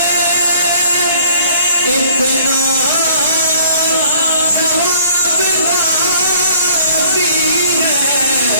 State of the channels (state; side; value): inverted; both; correlation -0.56